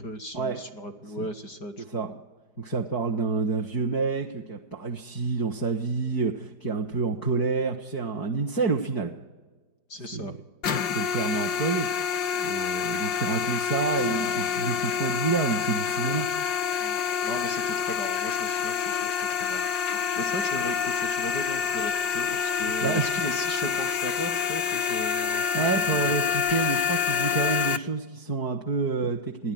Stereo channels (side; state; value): right; late; 4.9 ms